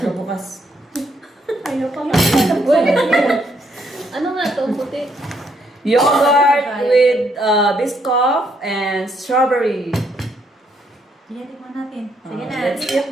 bukas. Ayaw pa nga. Ano nga ito? Puti. Yogurt with Biscoff and strawberry. Sige, tikman natin. Sige na. Let's eat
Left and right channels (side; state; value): both; normal; correlation 0.73